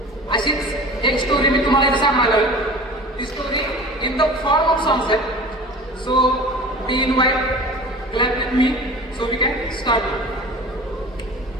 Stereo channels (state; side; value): normal; both; correlation 0.39